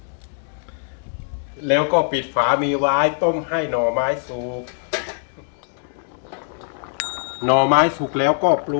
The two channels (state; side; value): silent; right; 64 dB below the other